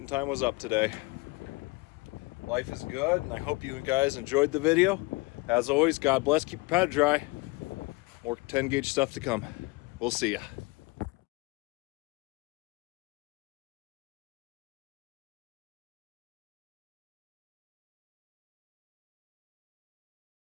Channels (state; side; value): quieter; right; 25.1 dB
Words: time was up today. Life is good, and I hope you guys enjoyed the video. As always, God bless, keep your powder dry. More 10 gauge stuff to come. We'll see ya.